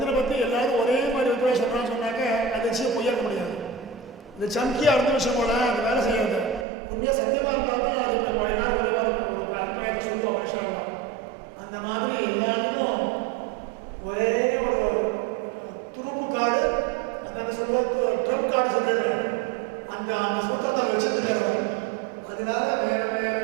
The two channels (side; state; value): left; drops out; at 6.7 s